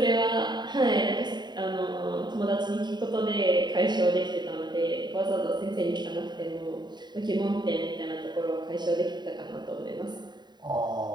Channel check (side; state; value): left; late; 0.21 ms